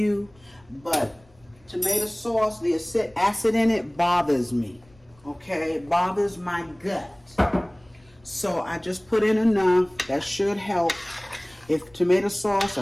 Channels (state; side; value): noise; left; rumble, 30 dB below the sound